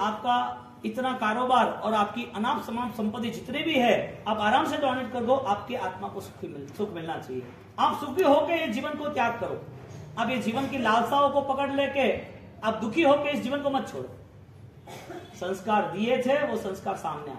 इतना कारोबार और आपकी अनाप समाप संपत्ति जितने भी है आप आराम से डोनेट कर दो, आपकी आत्मा को सुख मिलना चाहिए। आप सुखी होकर ये जीवन को त्याग करो। आप ये जीवन की लालसाओं को पकड़ लेके आप दुखी होकर इस जीवन को मत छोड़ो। संस्कार दिए थे, वो संस्कार सामने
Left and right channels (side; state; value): both; identical; correlation 1.00